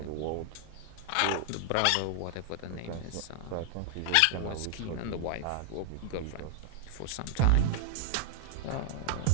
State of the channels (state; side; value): different; both; correlation 0.00